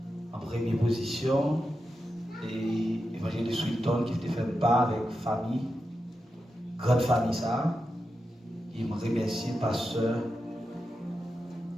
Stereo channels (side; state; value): both; normal; correlation 0.89